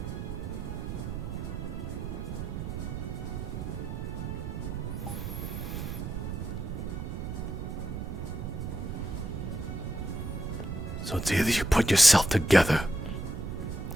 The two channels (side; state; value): right; noise; rumble, 5 dB below the sound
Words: So it's either you put yourself together,